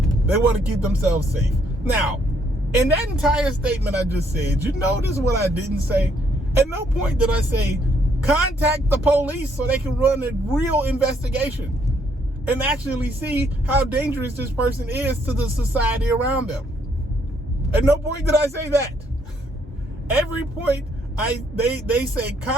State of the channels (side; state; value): both; normal; correlation 0.70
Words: they want to keep themselves safe. Now, in that entire statement I just said, you notice what I didn't say? At no point did I say, contact the police so they can run a real investigation and actually see how dangerous this person is to the society around them. At no point did I say that. Every point they say,